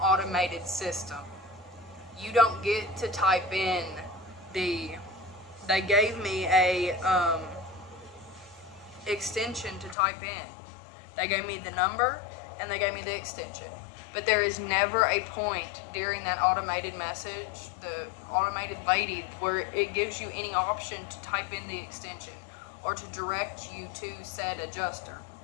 automated system. You don't get to type in they gave me a extension to type in. They gave me the number and they gave me the extension. But there is never a point during that automated message, the automated lady, where it gives you any option to type in the extension or to direct you to said adjuster.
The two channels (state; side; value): drops out; right; at 10.0 s